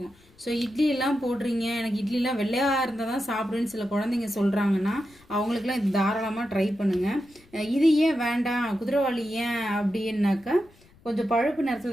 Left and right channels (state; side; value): noise; left; rumble, 28 dB below the sound